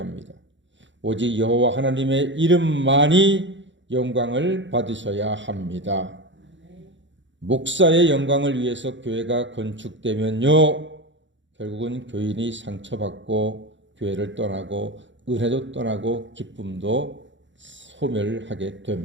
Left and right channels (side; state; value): left; late; 0.54 ms